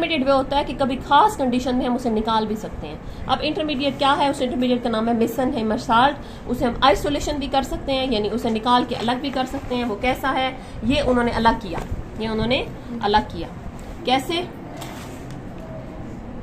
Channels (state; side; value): identical; both; correlation 1.00